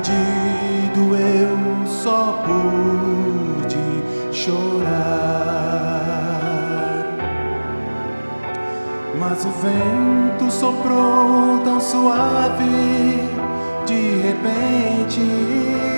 eu só pude chorar. Mas o vento soprou tão suave de repente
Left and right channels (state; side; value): inverted; both; correlation -1.00